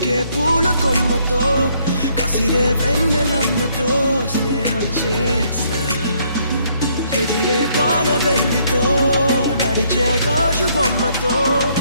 పూల కొమ్మతో కసిరే వెన్నెలమ్మతో స్నేహం చేసా ఎగిరే పాల వెల్లితో నడిచే గాజు బొమ్మతో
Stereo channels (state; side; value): inverted; both; correlation -0.68